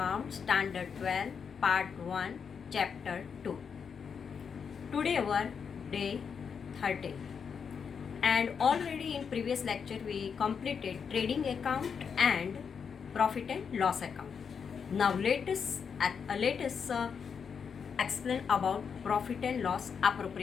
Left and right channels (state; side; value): quieter; right; 6.5 dB